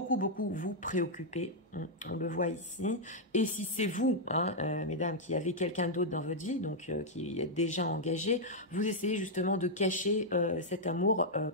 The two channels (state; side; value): normal; both; correlation -0.04